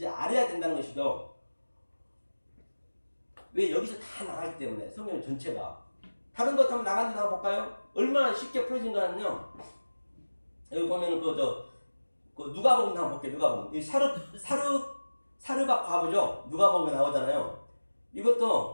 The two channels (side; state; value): both; inverted; correlation -1.00